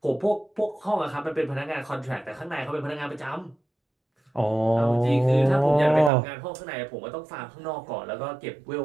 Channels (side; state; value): left; drops out; at 6.1 s